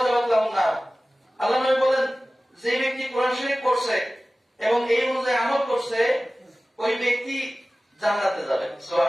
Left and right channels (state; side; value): normal; both; correlation 0.97